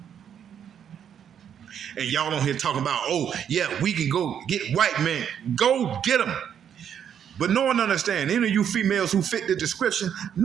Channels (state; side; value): quieter; left; 8.7 dB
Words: And y'all don't hear talking about, oh, yeah, we can go get white men. Go get them. But no one understands. Any of you females who fit the description,